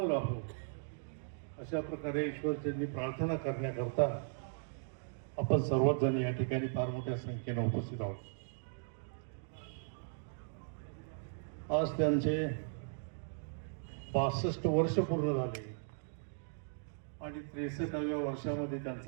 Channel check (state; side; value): silent; left; digital silence